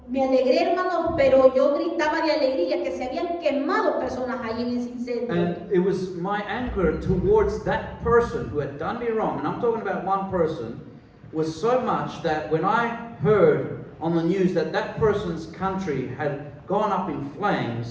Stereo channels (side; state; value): both; identical; correlation 1.00